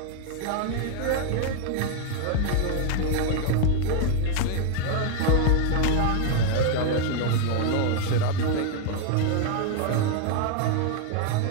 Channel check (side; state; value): both; different; correlation 0.00